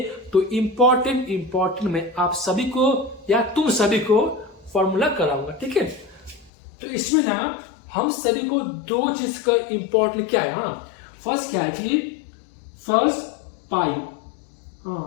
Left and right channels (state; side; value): drops out; right; at 6.5 s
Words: तो इंपॉर्टेंट में आप सभी को या तुम सभी को फॉर्मूला कराऊंगा। ठीक है, तो इसमें ना हम सभी को 2 चीज का इंपॉर्टेंट क्या है, फर्स्ट क्या है कि फर्स्ट पाई,